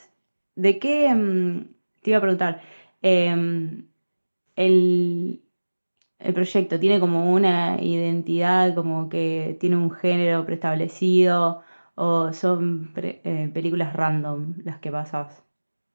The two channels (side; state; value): both; inverted; correlation -1.00